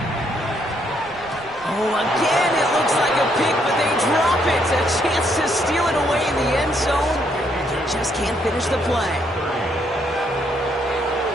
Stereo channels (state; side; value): normal; both; correlation 0.72